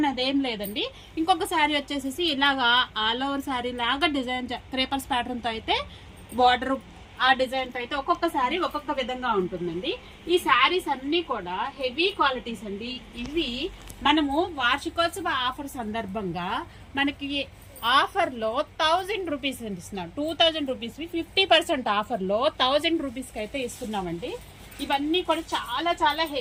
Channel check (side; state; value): both; identical; correlation 1.00